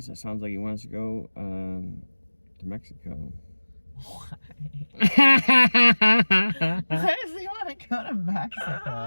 like he wants to go to Mexico. Why? Why does he want to go to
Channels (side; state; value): both; inverted; correlation -1.00